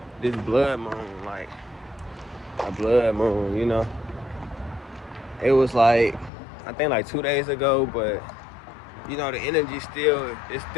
blood moon, like a blood moon. It was like, I think like 2 days ago, but the energy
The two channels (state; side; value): drops out; right; at 6.3 s